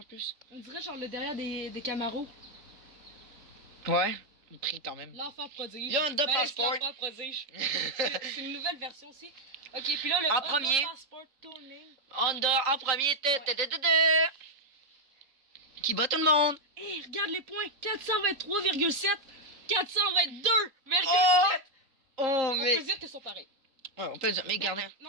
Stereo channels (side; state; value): left; late; 3.8 ms